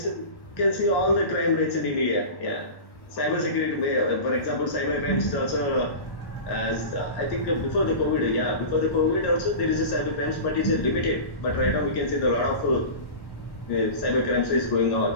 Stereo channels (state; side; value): late; right; 1.1 ms